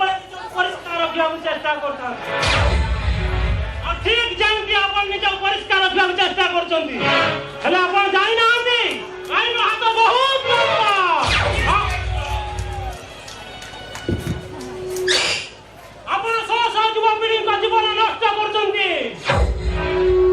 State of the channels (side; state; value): both; identical; correlation 1.00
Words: ପରିଷ୍କାର ରଖିବାକୁ ଚେଷ୍ଟା କରୁଥାନ୍ତି। ଆଉ ଠିକ ଯେମିତି ଆପଣ ନିଜକୁ ପରିଷ୍କାର ରଖିବାକୁ ଚେଷ୍ଟା କରୁଛନ୍ତି, ହେଲେ ଆପଣ ଜାଣିନାହାନ୍ତି ଆଇନ ହାତ ବହୁତ ଲମ୍ବା। ଆପଣ ଶହ ଶହ ଯୁବପିଢ଼ିଙ୍କ ଜୀବନ ନଷ୍ଟ କରୁଛନ୍ତି।